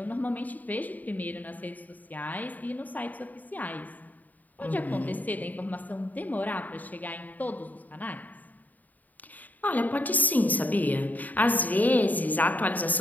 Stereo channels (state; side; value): late; right; 0.081 ms